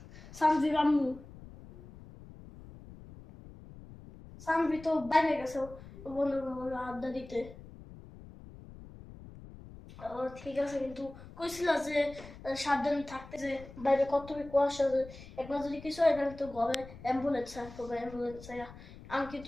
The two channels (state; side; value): noise; left; rumble, 17 dB below the sound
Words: সানজির আম্মু, সানভি তো বাইরে গেছে বন্ধুর আড্ডা দিতে। ঠিক আছে, কিন্তু কইছিল যে সাবধানে থাকতে, যে বাইরে কত কুয়াশা, যে একবার যদি কিছু হয় তাহলে তো ঘরে অ্যাম্বুলেন্স আসবে, অ্যাম্বুলেন্স। আমি